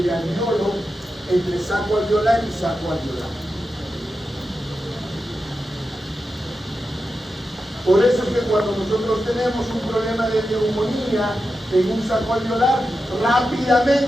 alveolo, entre saco alveolar y saco alveolar. Por eso es que cuando nosotros tenemos un problema de neumonía en un saco alveolar,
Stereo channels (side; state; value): both; normal; correlation 0.90